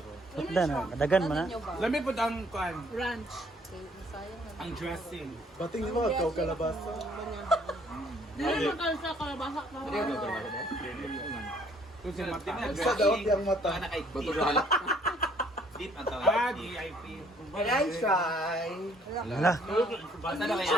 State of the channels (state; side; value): normal; both; correlation 0.62